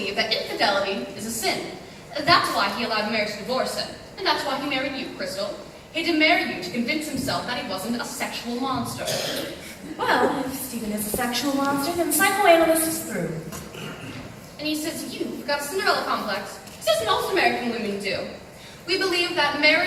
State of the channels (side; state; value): both; identical; correlation 1.00